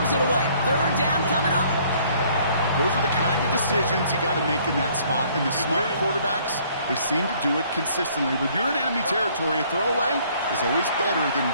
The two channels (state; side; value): inverted; both; correlation -0.60